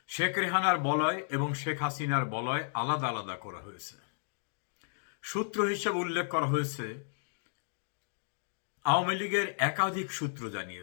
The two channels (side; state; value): right; silent; digital silence